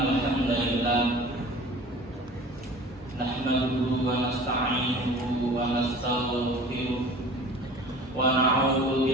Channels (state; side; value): normal; both; correlation 0.42